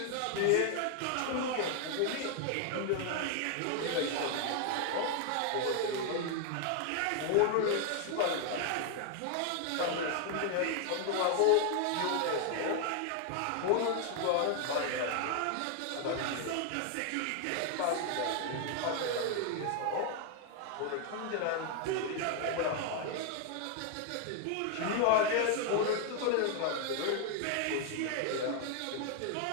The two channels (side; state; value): both; different; correlation 0.00